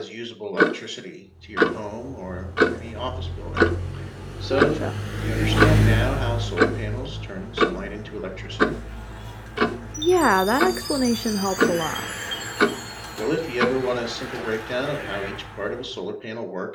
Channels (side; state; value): both; identical; correlation 1.00